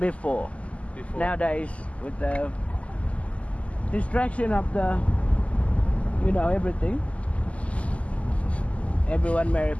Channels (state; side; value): late; right; 0.065 ms